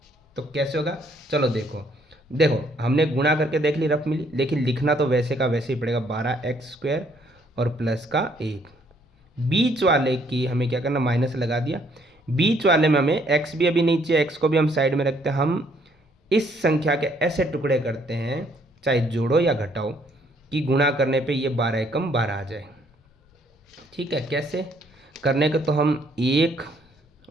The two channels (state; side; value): normal; both; correlation 0.66